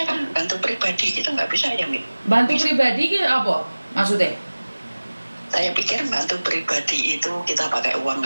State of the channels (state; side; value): inverted; both; correlation -1.00